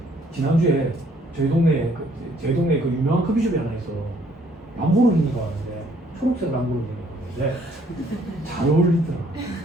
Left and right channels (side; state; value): both; normal; correlation 0.64